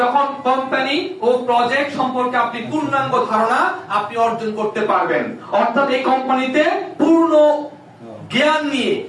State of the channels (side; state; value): both; identical; correlation 1.00